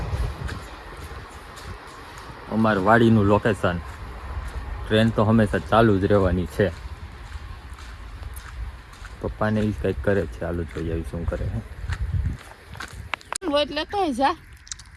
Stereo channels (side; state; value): both; identical; correlation 1.00